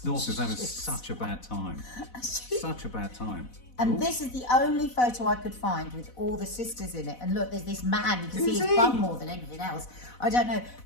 North is having shit. such a bad time. Such a bad time. And Ooh. this is the only photo I could find with all the sisters in it. And look, there's this man. You can see Who's his he? bum more than anything else. I don't know.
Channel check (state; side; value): late; right; 4.0 ms